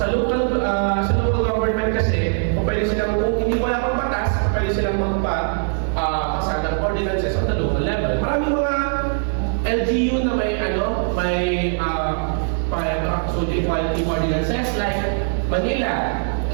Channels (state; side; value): silent; left; 64 dB below the other